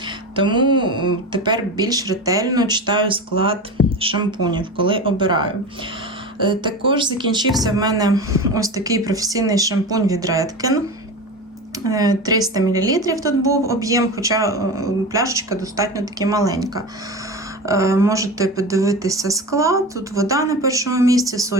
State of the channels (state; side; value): normal; both; correlation 0.27